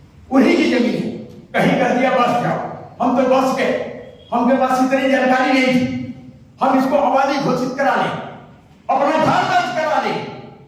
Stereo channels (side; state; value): both; identical; correlation 1.00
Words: उन्हीं की जमीन है। कहीं कह दिया बस जाओ, हम तो बस गए, हमके पास इतनी जानकारी नहीं थी, हम इसको आबादी घोषित करा लें, अपना घर दर्ज करा लें।